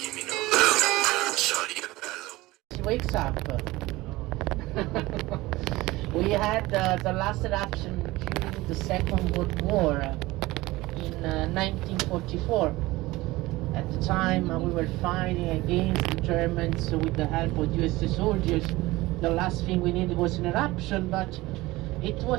me no love. Shawty a bad little. She wakes up. We had the last eruption during the Second World War in 1944. At the time we were fighting against the Germans with the help of US soldiers. The last thing we needed was an eruption, but it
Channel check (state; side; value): quieter; left; 19.6 dB